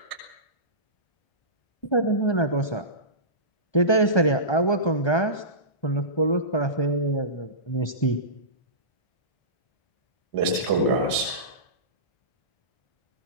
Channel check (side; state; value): right; late; 1.3 ms